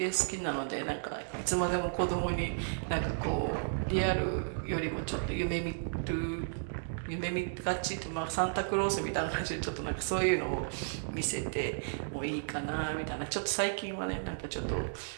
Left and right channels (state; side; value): silent; left; digital silence